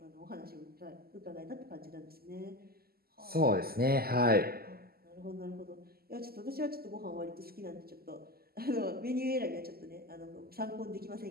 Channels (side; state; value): left; late; 0.45 ms